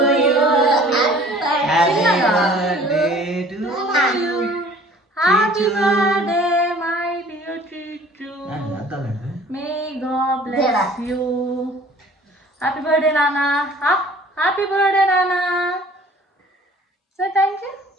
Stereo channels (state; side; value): normal; both; correlation 0.50